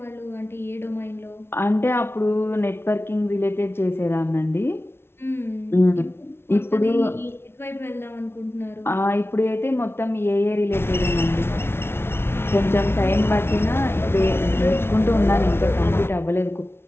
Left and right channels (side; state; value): right; late; 0.12 ms